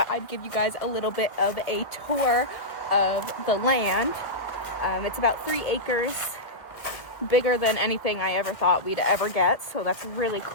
I'd give you guys a little bit of a tour of the land. It's about 3 acres, bigger than anything I ever thought we'd ever get, so that's really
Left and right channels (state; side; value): late; right; 1.3 ms